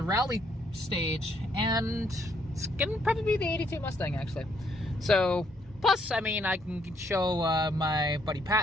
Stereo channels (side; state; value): both; normal; correlation 0.71